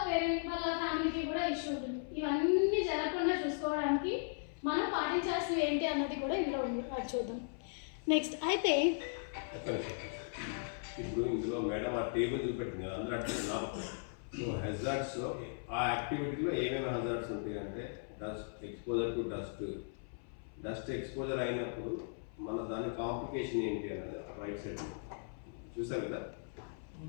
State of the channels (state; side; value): silent; right; 53 dB below the other